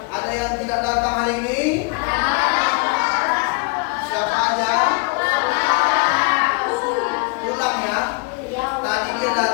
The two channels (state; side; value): quieter; right; 30.2 dB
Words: Ada yang tidak datang hari ini? Siapa aja? Pulang ya? Tadi dia